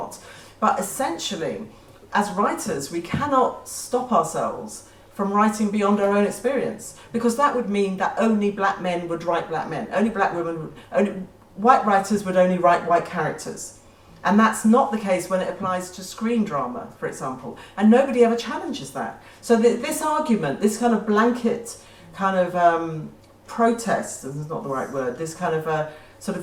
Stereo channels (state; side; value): identical; both; correlation 1.00